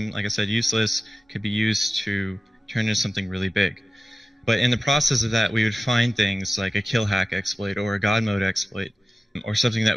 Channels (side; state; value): both; normal; correlation 0.95